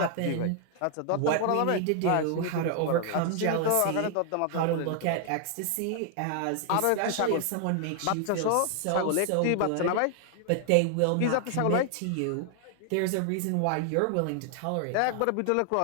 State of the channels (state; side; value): different; both; correlation 0.00